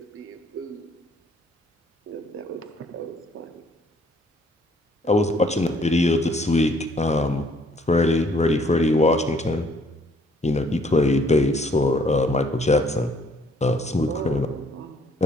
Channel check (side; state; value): both; normal; correlation 0.63